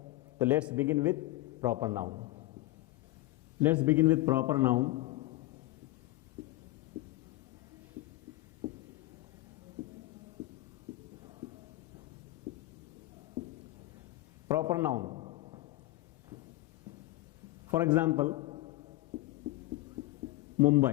तो let's begin with proper noun. Let's begin with proper noun. Proper noun, for example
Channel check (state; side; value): quieter; right; 18.3 dB